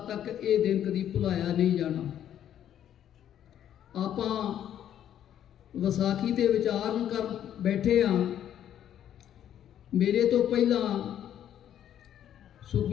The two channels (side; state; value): right; quieter; 10.5 dB